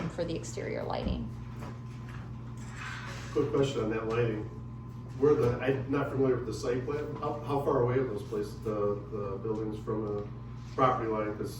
for the exterior lighting. quick question on that lighting. I'm not familiar with the site plan. How far away are those places, the buildings from a property line?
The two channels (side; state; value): both; identical; correlation 1.00